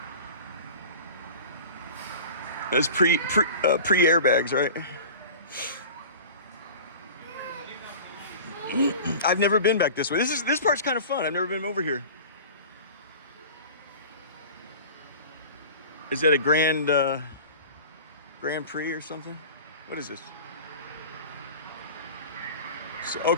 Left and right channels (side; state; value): both; inverted; correlation -0.38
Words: That's pre airbags, right? I've never been back this way. This part's kind of fun. I've never been over here. Is that a Grand Prix or something? What is this? So